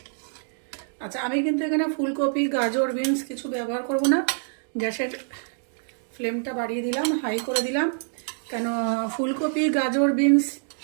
আচ্ছা, আমি কিন্তু এখানে ফুলকপি, গাজর, বিনস কিছু ব্যবহার করব না। গ্যাসের ফ্লেমটা বাড়িয়ে দিলাম, হাই করে দিলাম। কেন, ফুলকপি, গাজর, বিনস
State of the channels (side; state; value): left; silent; digital silence